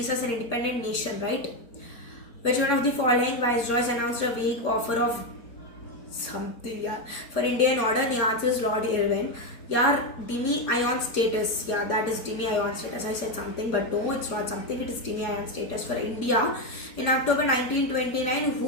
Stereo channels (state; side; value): late; right; 4.3 ms